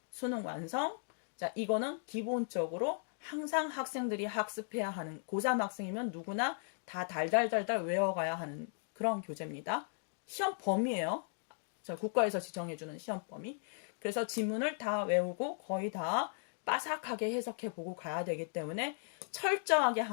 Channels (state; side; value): silent; right; digital silence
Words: 수능 완성. 자, 이거는 기본적으로 항상 학생들이 학습해야 하는 고3 학생이면 누구나 다 달달달달 외워가야 하는 그런 교재입니다. 시험 범위예요. 자, 국가에서 지정해주는 시험 범위. 그래서 지문을 다 외우고 거의 다 빠삭하게 해석해보고 가야 되기 때문에 철저하게